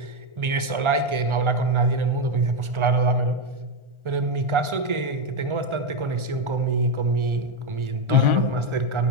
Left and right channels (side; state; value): left; late; 1.4 ms